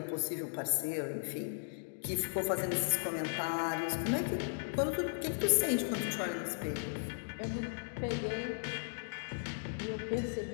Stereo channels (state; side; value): silent; right; digital silence